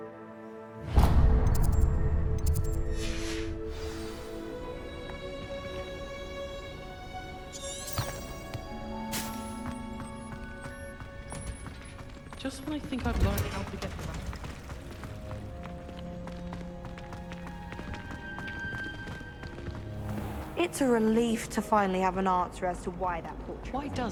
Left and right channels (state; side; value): identical; both; correlation 1.00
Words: Just when I think I've learned how to get It's a relief to finally have an answer as to why that portrait. Why